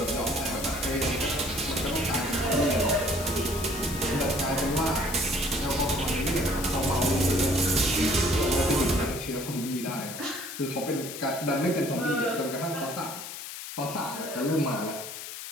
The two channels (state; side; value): noise; left; hiss, 9 dB below the sound